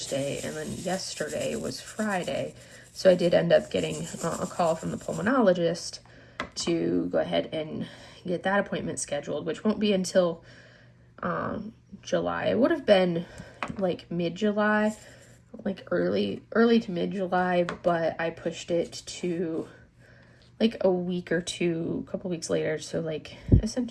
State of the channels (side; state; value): both; identical; correlation 1.00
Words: and then yesterday was Friday. So I did end up getting a call from the pulmonologist to go ahead and get that appointment scheduled, which won't be until July. It would have been like mid-July, like early to mid-July, but I pushed it to like a week or two, a couple weeks later. So like